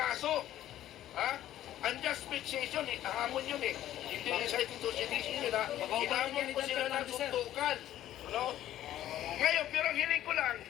Ha? Unjust fixation, hamon yun eh. Hindi recited to sedition yun ha. Hinamon ko sila ng suntukan. Ano? Ngayon, pero ang hiling ko lang,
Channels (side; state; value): right; quieter; 12.8 dB